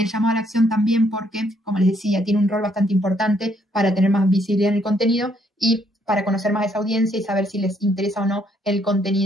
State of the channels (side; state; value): both; normal; correlation 0.70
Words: el llamado a la acción también porque, como les decía, tiene un rol bastante importante para tener más visibilidad en el contenido y para conocer más a esa audiencia y saber si les interesa o no el